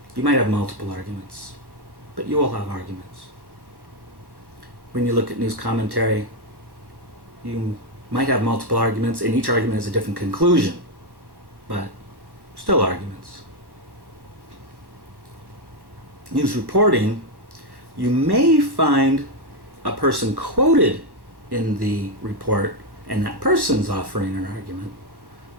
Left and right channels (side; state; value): left; late; 1.1 ms